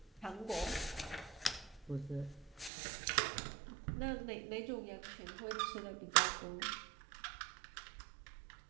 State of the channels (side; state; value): left; drops out; at 2.7 s